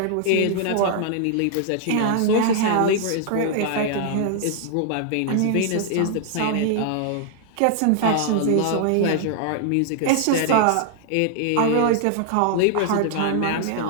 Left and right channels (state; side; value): different; both; correlation -0.01